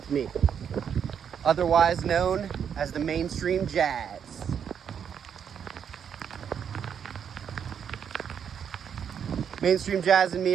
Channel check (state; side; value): quieter; left; 7.9 dB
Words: me, otherwise known as the Mainstream Jazz. Mainstream Jazz and me